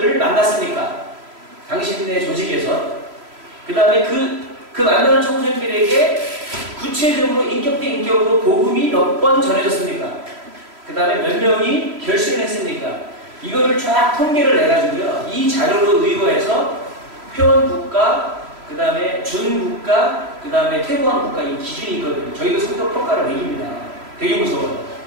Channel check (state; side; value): late; left; 3.0 ms